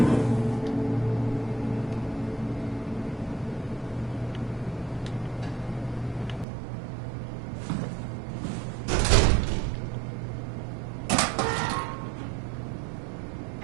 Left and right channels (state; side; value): drops out; left; at 6.5 s